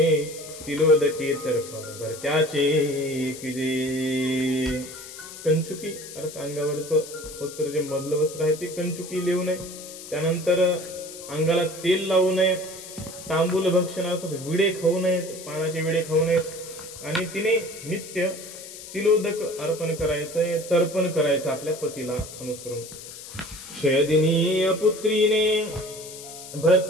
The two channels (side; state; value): left; noise; hiss, 14 dB below the sound